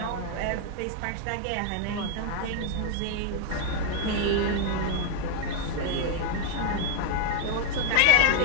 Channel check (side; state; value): both; different; correlation 0.00